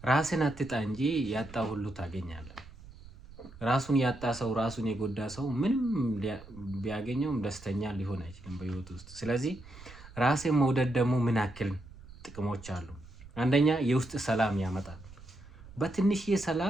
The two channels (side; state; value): right; noise; rumble, 18 dB below the sound